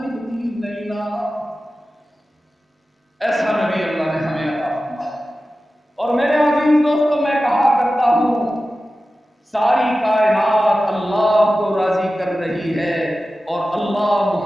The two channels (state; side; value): normal; both; correlation 0.94